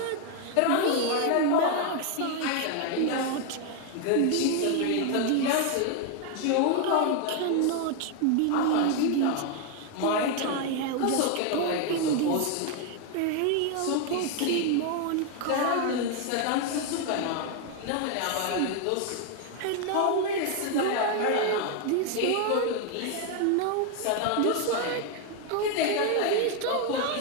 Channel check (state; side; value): different; both; correlation 0.01